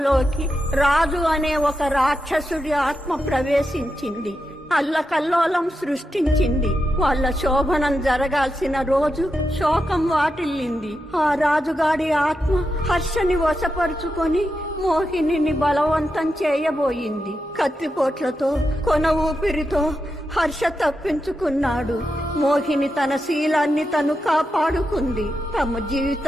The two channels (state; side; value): normal; both; correlation 0.87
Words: రాజు అనే ఒక రాక్షసుడి ఆత్మ ప్రవేశించింది. అల్లకల్లోలం సృష్టించింది. వాళ్ళ శోభనం జరగాల్సిన రోజు శోకం వాటిల్లింది. ఆ రాజుగాడి ఆత్మ హర్షని వశపరుచుకొని మోహినిని బలవంతం చేయబోయింది. కత్తిపోట్లతో కొన ఊపిరితో హర్ష తప్పించుకున్నాడు. మోహిని తన శీలాన్ని తను కాపాడుకుంది. తమ